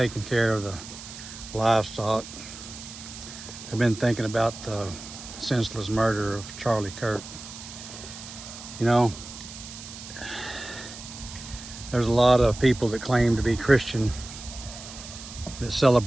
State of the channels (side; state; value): right; noise; hiss, 13 dB below the sound